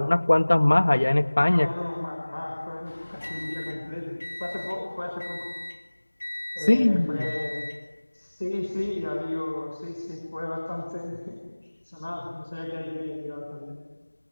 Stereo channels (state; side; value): inverted; both; correlation -1.00